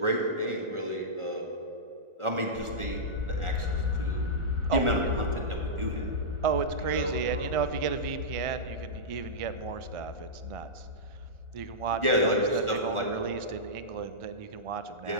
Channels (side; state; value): left; late; 1.4 ms